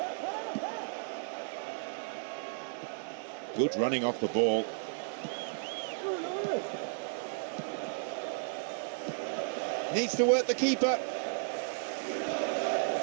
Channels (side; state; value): left; silent; digital silence